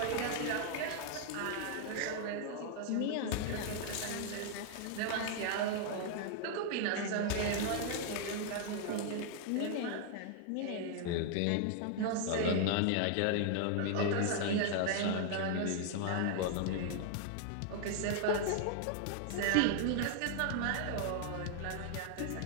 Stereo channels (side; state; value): both; different; correlation 0.00